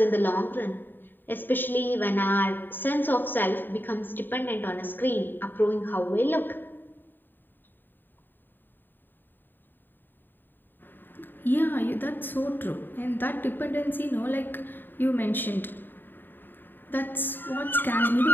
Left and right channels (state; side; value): late; right; 0.093 ms